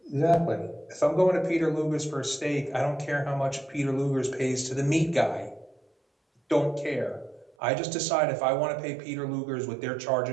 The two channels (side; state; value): left; drops out; at 7.6 s